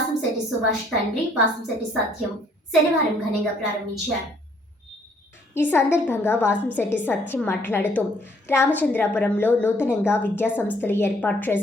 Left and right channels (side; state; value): both; normal; correlation 0.63